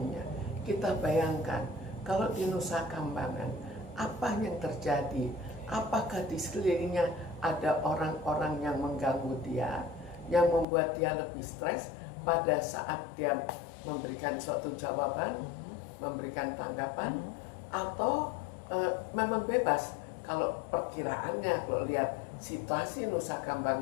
Kita bayangkan kalau di Nusa Kambangan, apa yang terjadi? Apakah di sekelilingnya ada orang-orang yang mengganggu dia, yang membuat dia lebih stres pada saat dia memberikan suatu jawaban, memberikan tanggapan, atau memang bebas? Kalau perkiraannya, kalau lihat situasi Nusa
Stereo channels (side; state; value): right; drops out; at 10.7 s